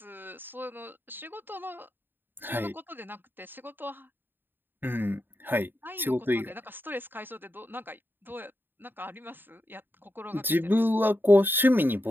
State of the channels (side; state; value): left; late; 0.095 ms